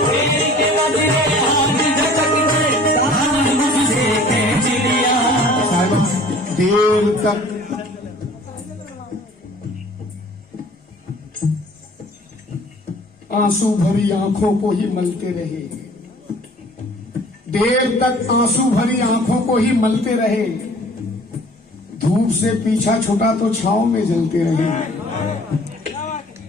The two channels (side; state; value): both; normal; correlation 0.50